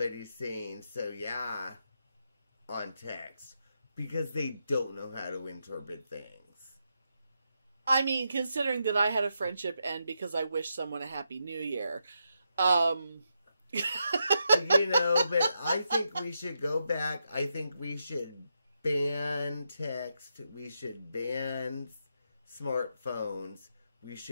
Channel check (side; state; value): both; inverted; correlation -0.84